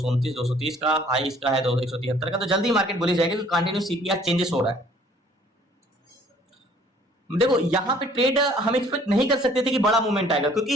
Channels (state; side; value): normal; both; correlation 0.57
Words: 230 का, हाई इसका है 173 का। तो जल्दी मार्केट बोली जाएगी क्योंकि कंटिन्यू सीपीआर चेंजेस हो रहा है। देखो यहाँ पे ट्रेड हम एक्सपेक्ट नहीं कर सकते थे कि बड़ा मूवमेंट आएगा, क्योंकि